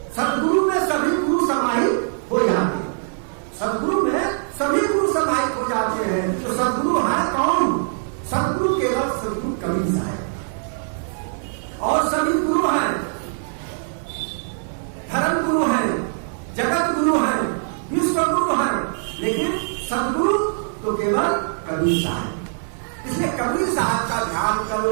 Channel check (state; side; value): silent; left; 57 dB below the other